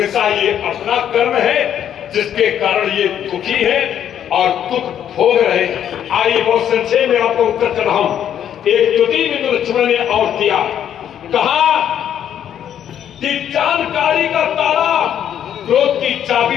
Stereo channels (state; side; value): quieter; right; 9.8 dB